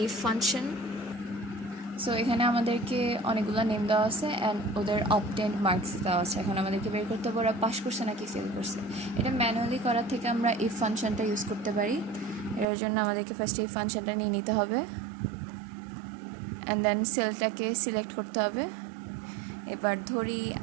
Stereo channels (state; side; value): drops out; left; at 12.7 s